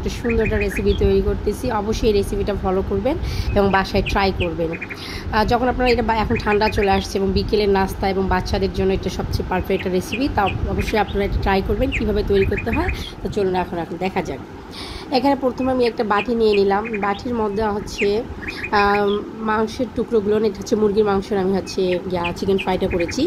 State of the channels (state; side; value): identical; both; correlation 1.00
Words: সুন্দর একটা রেসিপি তৈরি করতেছি। অবশ্যই এই রেসিপিটা ফলো করবেন এবং বাসায় ট্রাই করবেন। যখন আপনারা এটা এখন ঠান্ডা চলে আসছে এবং বিকেলের নাস্তা এবং বাচ্চাদের জন্য এটা সবচেয়ে পারফেক্ট একটা রেসিপি, তা অবশ্যই আপনারা এটা ট্রাই করবেন কীভাবে তৈরি করতে হয়। তো চলুন এখন দেখা যাক। এখানে প্রথমে আমি একটা বাটি নিয়ে নিলাম। বাটির মধ্যে হচ্ছে মাংসের টুকরোগুলো, এটা হচ্ছে মুরগির মাংসের, আমি হচ্ছে চিকেন ফ্রাইটা করেছি,